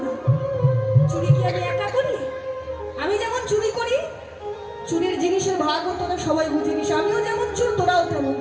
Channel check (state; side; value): identical; both; correlation 1.00